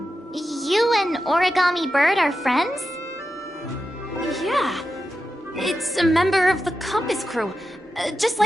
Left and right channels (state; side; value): normal; both; correlation 0.90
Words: You and Origami Bird are friends? Yeah. It's a member of the Compass Crew, just